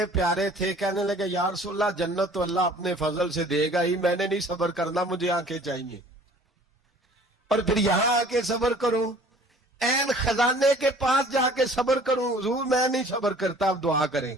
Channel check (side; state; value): both; normal; correlation 0.51